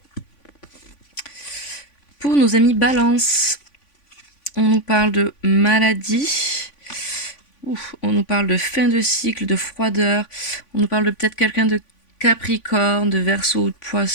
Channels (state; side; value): late; right; 3.5 ms